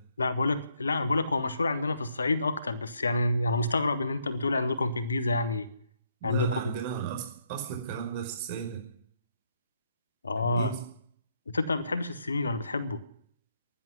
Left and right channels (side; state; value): both; inverted; correlation -0.73